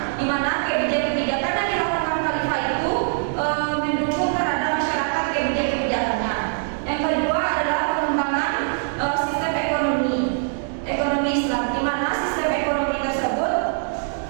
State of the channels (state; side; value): silent; left; 64 dB below the other